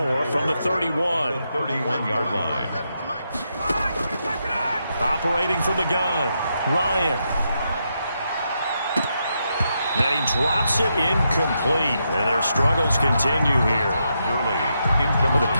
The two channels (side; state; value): both; inverted; correlation -0.82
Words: from the 31. The 31-yard line. Operating from the gun, Ryan. Then he drops it incomplete, and their struggles continue here. The